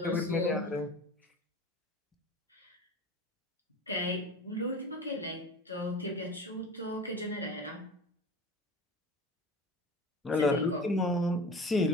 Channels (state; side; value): normal; both; correlation 0.37